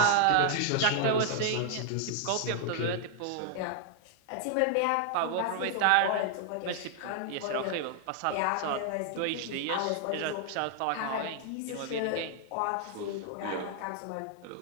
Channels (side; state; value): both; different; correlation 0.00